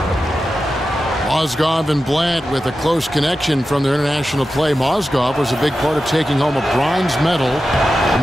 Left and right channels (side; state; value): both; normal; correlation 0.92